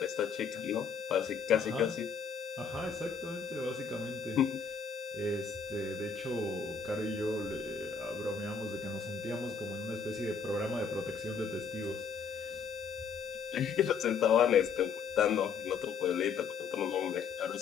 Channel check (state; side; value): quieter; right; 5.9 dB